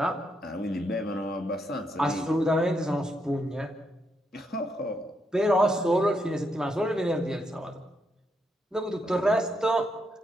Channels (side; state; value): both; normal; correlation 0.79